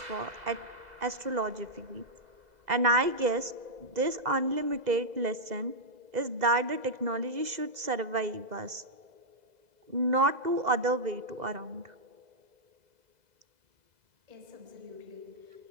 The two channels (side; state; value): left; late; 2.0 ms